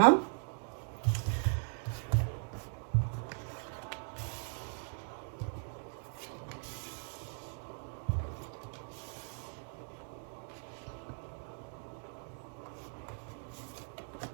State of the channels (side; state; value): left; silent; 52 dB below the other